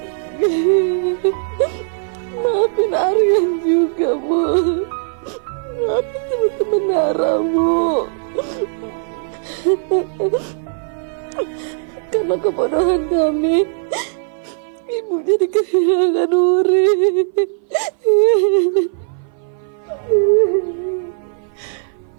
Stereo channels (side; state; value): left; silent; 59 dB below the other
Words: Maafin Aryan juga, Bu. Maafin teman-teman Nara, Bu. Karena kebodohan kami, Ibu jadi kehilangan Wuri.